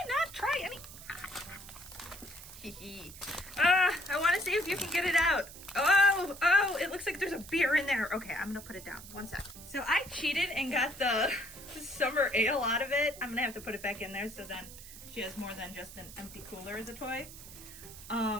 not try any? I want to see if you can get it out. Oh, it looks like there's a beer in there. Okay, I'm gonna put it down. One sec. So I cheated and got the summer ale out of it. I'm gonna have to put it back in there so then she has more than just an empty cooler as a toy.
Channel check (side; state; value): right; noise; hiss, 15 dB below the sound